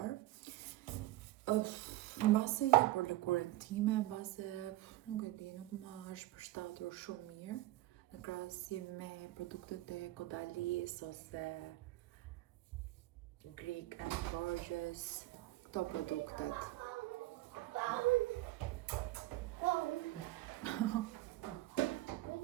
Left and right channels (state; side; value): quieter; left; 17.4 dB